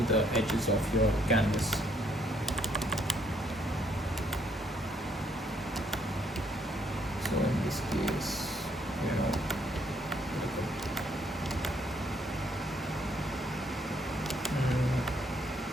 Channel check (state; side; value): normal; both; correlation 0.69